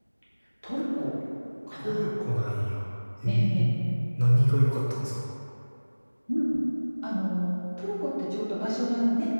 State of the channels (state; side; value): inverted; both; correlation -1.00